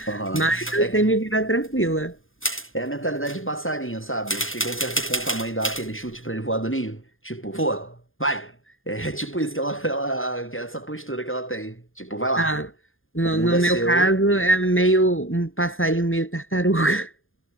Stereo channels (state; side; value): late; right; 0.59 ms